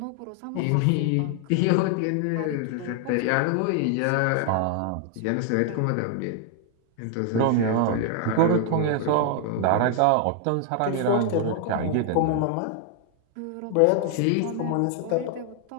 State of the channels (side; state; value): both; different; correlation 0.00